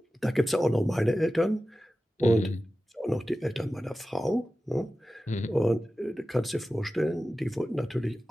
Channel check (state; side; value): normal; both; correlation 0.95